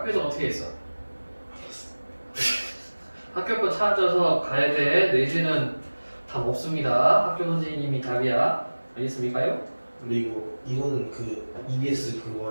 어떻게 했어? 학교 거 찾아서 가야 돼. 내지는 답 없습니다. 학교 선생님이 답이야. 알겠습니까요? 근데 이거는 그 EBS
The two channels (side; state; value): both; inverted; correlation -1.00